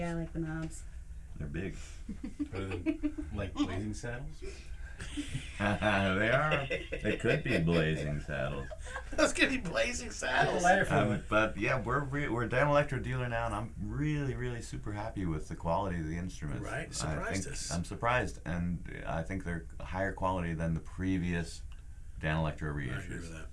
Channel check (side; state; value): both; identical; correlation 1.00